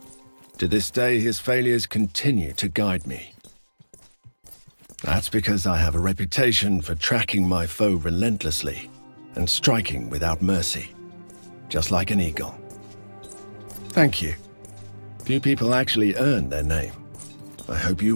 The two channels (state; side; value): inverted; both; correlation -1.00